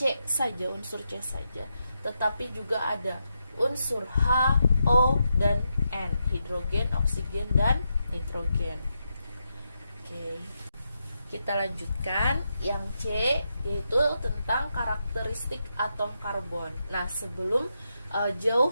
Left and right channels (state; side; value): inverted; both; correlation -0.84